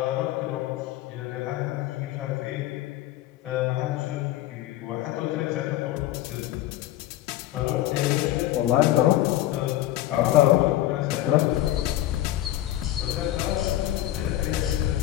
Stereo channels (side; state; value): right; quieter; 14.2 dB